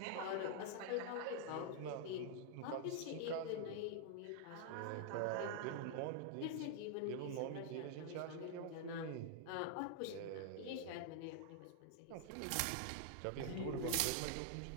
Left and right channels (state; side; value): different; both; correlation -0.01